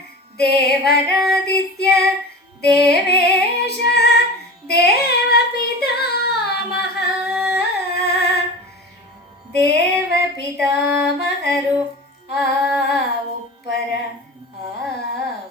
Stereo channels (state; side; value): normal; both; correlation 0.32